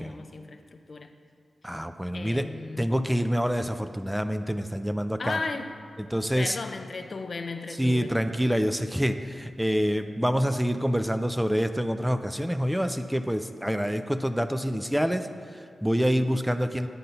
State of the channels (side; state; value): both; normal; correlation 0.98